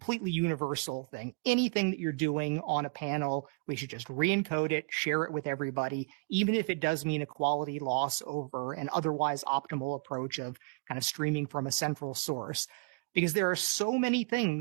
universal thing. Anything that you're doing on a panel, we should just re-encode it, share it with everybody, even if it does mean a quality loss over an otherwise optimal approach of kind of streaming from a central source. Because there are so many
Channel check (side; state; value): left; quieter; 32.3 dB